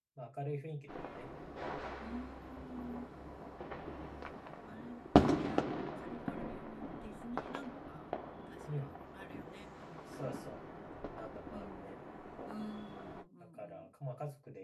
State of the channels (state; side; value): identical; both; correlation 1.00